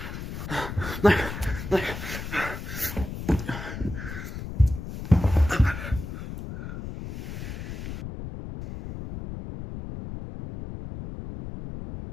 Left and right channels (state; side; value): noise; left; rumble, 8 dB below the sound